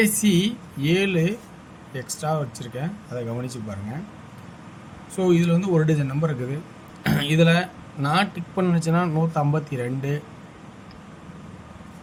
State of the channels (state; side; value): identical; both; correlation 1.00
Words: சி 7 எக்ஸ்ட்ரா வச்சுருக்கேன், அதை கவனித்து பாருங்கள். ஸோ இதில் வந்து ஒரு டஜன் நம்பர் இருக்குது. இதில் நான் டிக் பண்ணிச்சுன்னா 152,